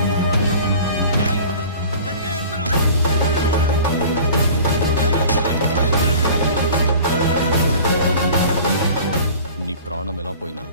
నీ ప్రాణం ఎలా పోయినా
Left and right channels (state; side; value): inverted; both; correlation -0.42